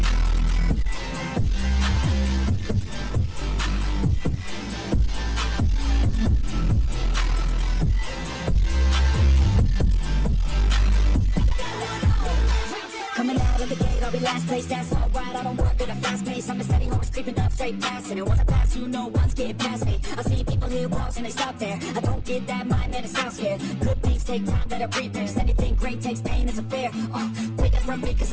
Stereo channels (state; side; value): identical; both; correlation 1.00